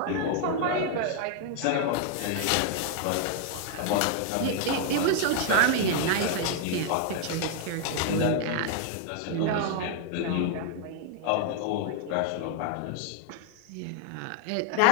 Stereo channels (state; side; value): different; both; correlation 0.00